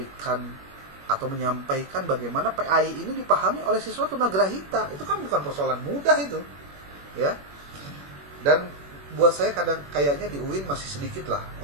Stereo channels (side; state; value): left; late; 21 ms